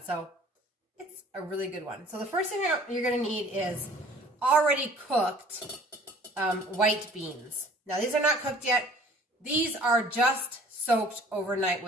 so it's a really good one. So the first thing you're going to need is already cooked white beans. Now these are not cooked yet. These are just soaked overnight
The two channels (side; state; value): both; normal; correlation 0.51